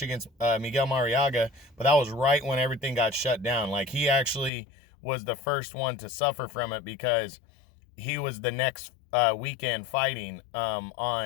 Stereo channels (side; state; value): right; drops out; at 4.5 s